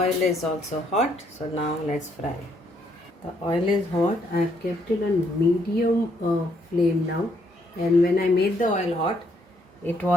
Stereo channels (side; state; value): both; normal; correlation 0.71